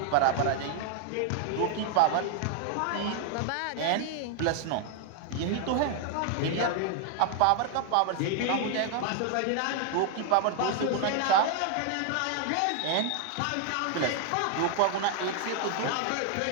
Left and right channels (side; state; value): both; different; correlation 0.00